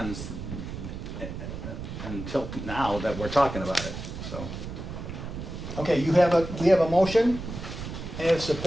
until now that we're talking about it, so. Okay, we have a motion and a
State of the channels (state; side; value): noise; right; rumble, 8 dB below the sound